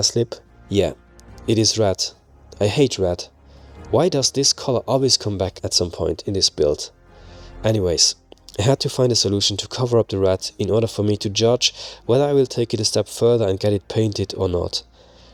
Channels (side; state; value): both; identical; correlation 1.00